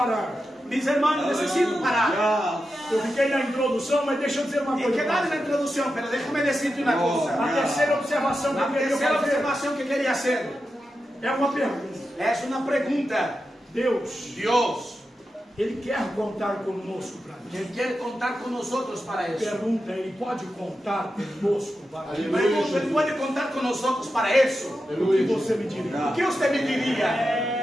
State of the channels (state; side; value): normal; both; correlation 0.90